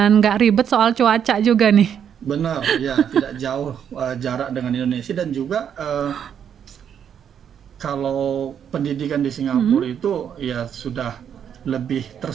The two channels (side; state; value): left; quieter; 8.5 dB